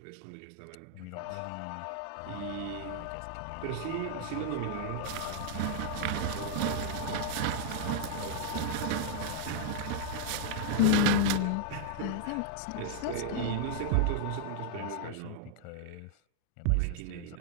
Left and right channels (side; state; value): both; different; correlation -0.01